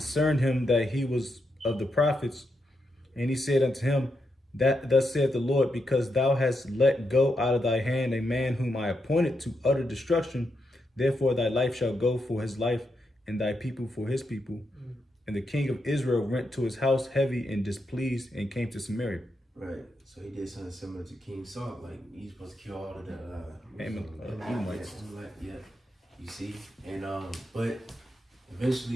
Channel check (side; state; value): both; normal; correlation 0.83